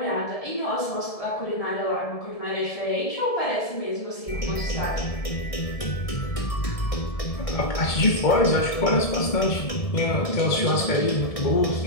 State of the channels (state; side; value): late; right; 1.7 ms